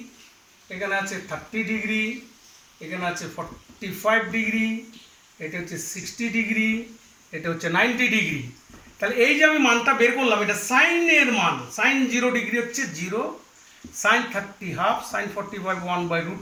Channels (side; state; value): both; identical; correlation 1.00